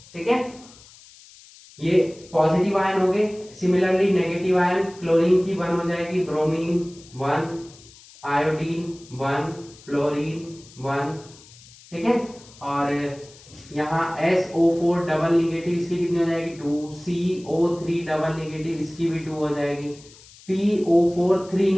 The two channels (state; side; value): noise; left; hiss, 23 dB below the sound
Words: ठीक है, ये पॉजिटिव आयन हो गए। सिमिलरली नेगेटिव आयन, क्लोरीन की 1 हो जाएगी, ब्रोमीन 1, आयोडीन 1, फ्लोरीन 1। ठीक है, और यहाँ SO4 डबल निगेटिव, इसकी कितनी हो जाएगी 2, CO3 डबल निगेटिव, इसकी भी 2 हो जाएगी, PO4 3